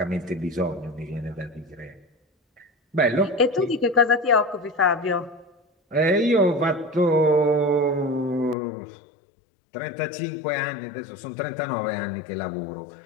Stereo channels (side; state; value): right; drops out; at 8.6 s